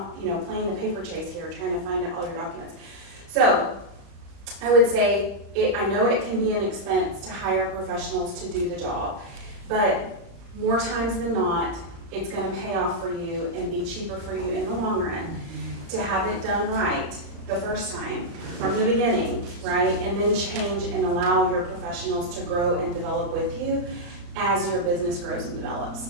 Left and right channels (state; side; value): late; left; 35 ms